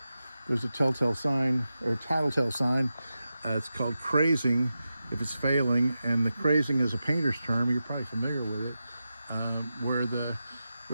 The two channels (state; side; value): inverted; both; correlation -0.91